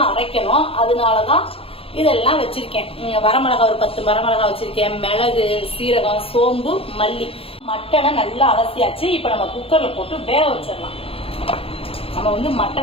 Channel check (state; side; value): late; right; 0.27 ms